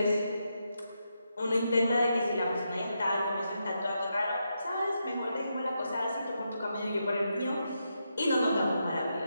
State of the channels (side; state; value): both; inverted; correlation -0.83